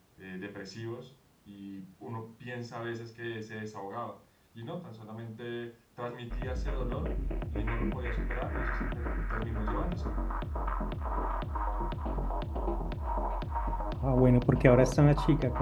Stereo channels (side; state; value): both; identical; correlation 1.00